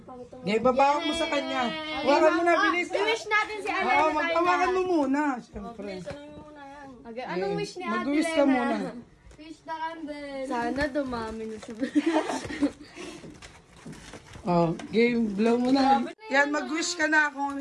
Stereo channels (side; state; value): both; identical; correlation 1.00